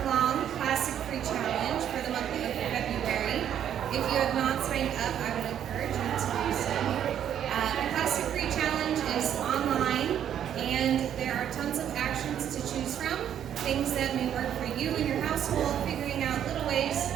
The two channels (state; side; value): quieter; left; 9.8 dB